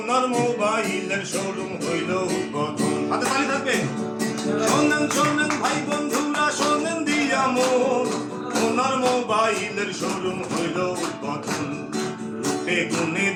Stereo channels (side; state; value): both; identical; correlation 1.00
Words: মোবাইলের শোরুম হইল উদ্বোধন হাতে তালি থাকবে শোনেন শোনেন ভাই বন্ধুরা শোনেন দিয়া মন ওনার মোবাইলের শোরুম হইল উদ্বোধন রূপে গুণে